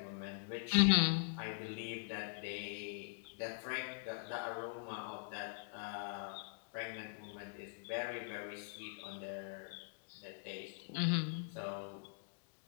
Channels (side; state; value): right; silent; digital silence